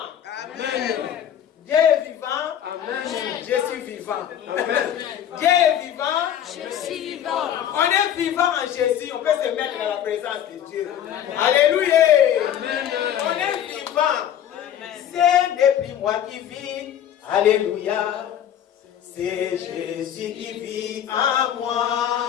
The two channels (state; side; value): quieter; right; 10.1 dB